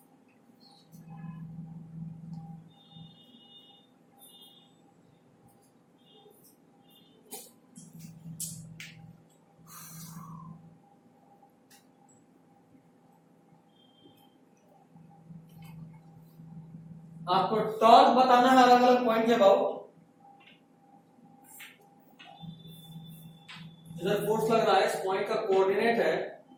आपको टॉर्क बताना है अलग अलग पॉइंट के अबाउट. इधर फोर्स लग रहा है. इस पॉइंट का कोऑर्डिनेट है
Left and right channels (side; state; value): both; identical; correlation 1.00